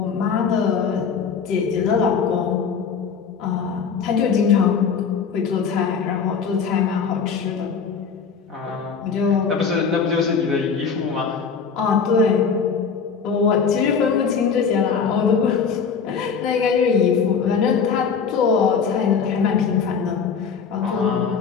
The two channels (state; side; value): quieter; right; 6.1 dB